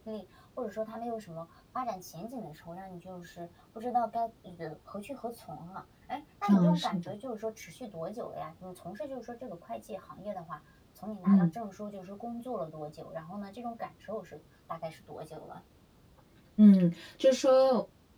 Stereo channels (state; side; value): identical; both; correlation 1.00